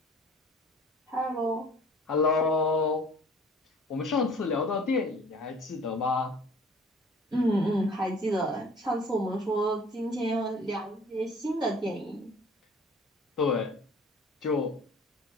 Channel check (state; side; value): normal; both; correlation 0.49